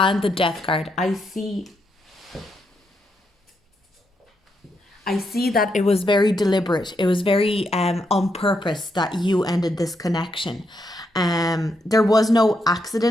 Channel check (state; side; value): normal; both; correlation 0.80